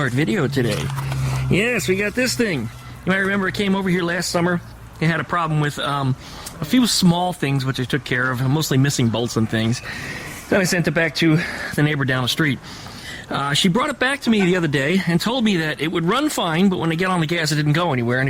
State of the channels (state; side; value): identical; both; correlation 1.00